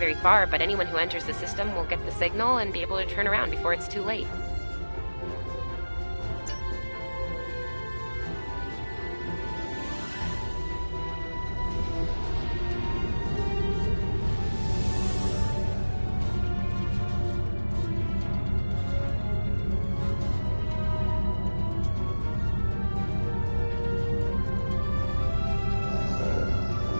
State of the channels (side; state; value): both; inverted; correlation -1.00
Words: far, but anyone who enters the system will get the signal and be able to turn around before it's too late.